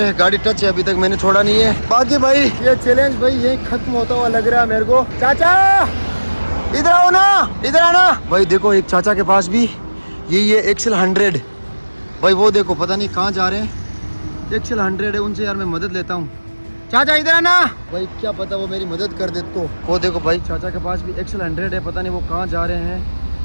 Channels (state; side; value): inverted; both; correlation -1.00